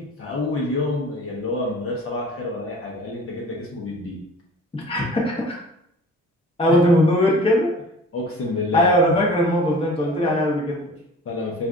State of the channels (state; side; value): normal; both; correlation 0.44